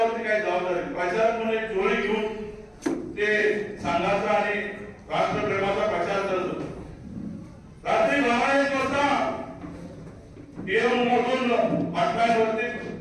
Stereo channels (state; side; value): identical; both; correlation 1.00